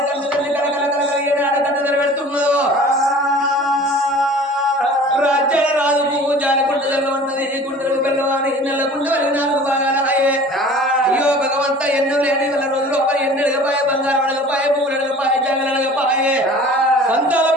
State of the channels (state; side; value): normal; both; correlation 0.44